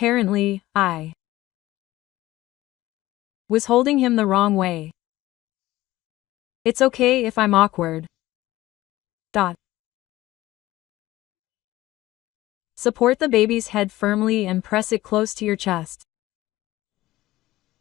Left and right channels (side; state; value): right; quieter; 16.8 dB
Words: I was holding him the wrong way. It's okay if I'm awkward. Support the baby's head firmly and press it close to your chest.